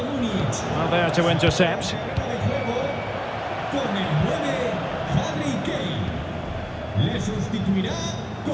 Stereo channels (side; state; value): both; identical; correlation 1.00